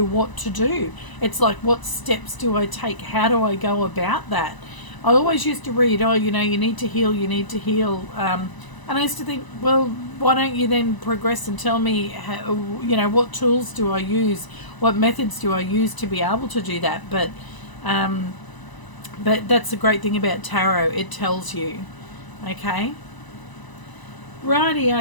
what to do. It's like, what steps do I take? How do I go about that? I always used to read, oh, you need to heal, you need to heal. And I used to think, well, why don't you then progress and tell me, how, what tools do I use? What methods do I use to be able to do that? But that's the great thing about tarot. It tells you. Okay.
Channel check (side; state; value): right; late; 1.0 ms